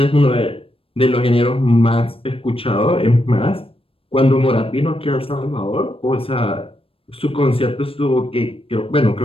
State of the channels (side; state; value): right; late; 0.27 ms